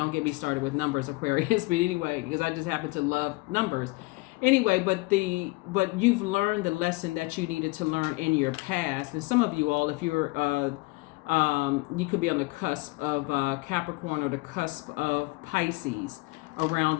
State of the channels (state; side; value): quieter; right; 24.3 dB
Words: get me started with numbers, Aquarius. But anyway, because I just happen to love numbers. Anyway, but you've learned the lesson that you needed to learn in your past. And some of you all, if you're you could be on the cusp of Capricorn or the cusp of Pisces around